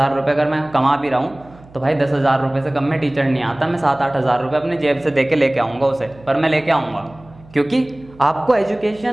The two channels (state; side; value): noise; right; hum, 24 dB below the sound